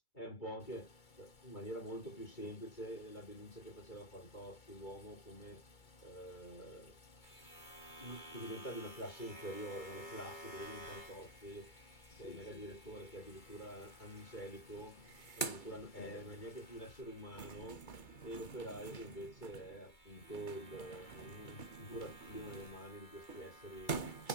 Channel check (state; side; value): late; right; 2.3 ms